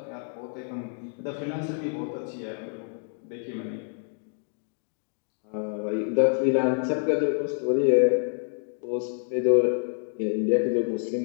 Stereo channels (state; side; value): silent; right; 60 dB below the other